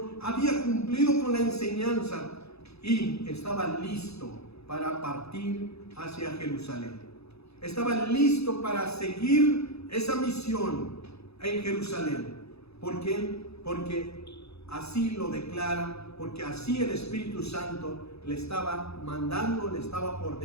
Había cumplido con la enseñanza. Y estaba listo para partir hacia Jerusalén. Estaba listo para seguir esa misión en Jerusalén. ¿Por qué? Porque así lo declara, porque así el Espíritu Santo le estaba mandando, le estaba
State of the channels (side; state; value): right; late; 0.79 ms